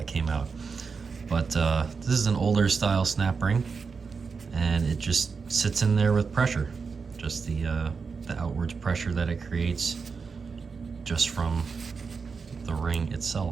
came out. But this is an older style snap ring, and it just sits in there with pressure. Just the outwards pressure that it creates just from the ring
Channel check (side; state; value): left; quieter; 5.2 dB